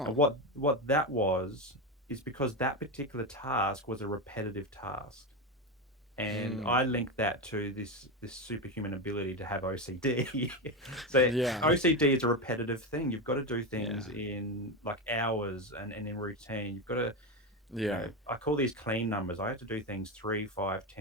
And what that was is because that particular task was a repetitive task. And Mm. I link that to this superhuman ability to have OCD. So Yeah. OCD is a repetitive thing. You've got to do Yeah. things in like hours and in routine. You've got to, Yeah. I call these clean numbers. I had to do things 3, 5,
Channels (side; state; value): both; normal; correlation 0.15